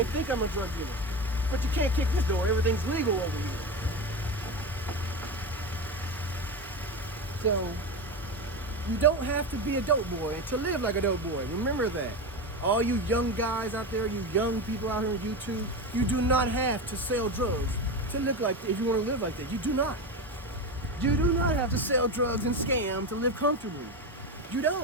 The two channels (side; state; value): both; normal; correlation 0.20